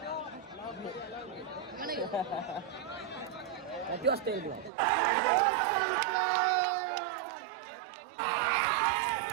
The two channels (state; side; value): drops out; left; at 4.7 s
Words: किती वाजता येईल तुला?